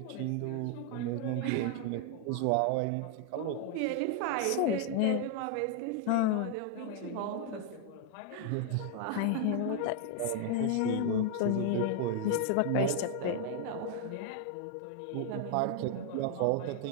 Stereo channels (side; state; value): both; different; correlation 0.00